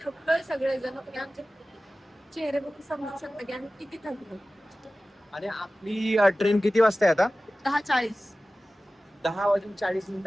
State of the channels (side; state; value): both; normal; correlation 0.96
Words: थकलोय सगळेजण. तुम्ही आमचे चेहरे बघून समजू शकता की आम्ही किती थकलो. आणि आपली ट्रेन किती वाजता आहे आता? 10:40.